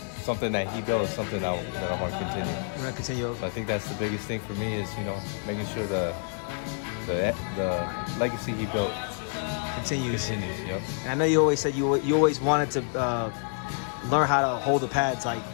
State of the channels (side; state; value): right; silent; 59 dB below the other